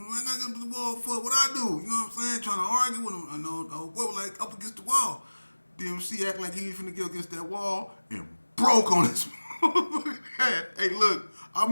him. I got up the wall for what I do. You know what I'm saying? Trying to argue with him. I know, like up against the wall. DMC act like he was finna get against that wall and broke on his head. Hey, look, I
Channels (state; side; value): inverted; both; correlation -1.00